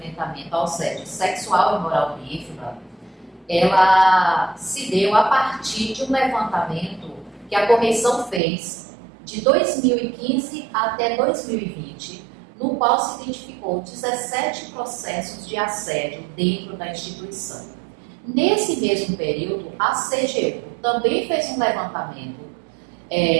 ao assédio sexual e moral no IFBA, ela se deu a partir de um levantamento que a correção fez de 2015 até 2020, no qual se identificou 17 processos de assédio dentro da instituição. Nesse mesmo período, a CGU também fez um levantamento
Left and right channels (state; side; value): drops out; left; at 8.4 s